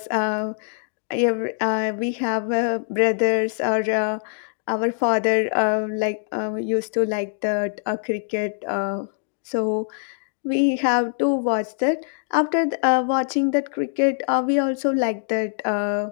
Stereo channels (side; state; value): right; silent; digital silence